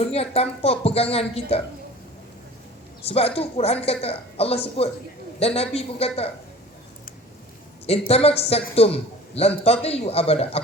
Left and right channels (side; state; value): both; normal; correlation 0.43